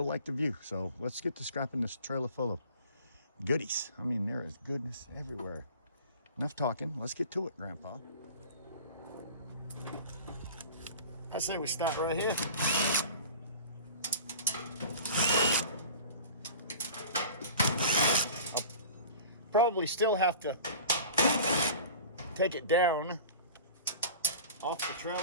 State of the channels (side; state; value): both; inverted; correlation -0.40